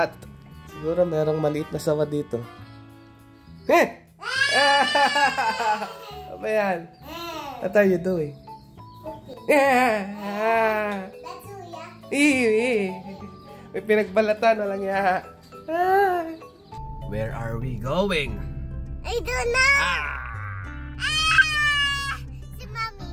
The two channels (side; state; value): both; identical; correlation 1.00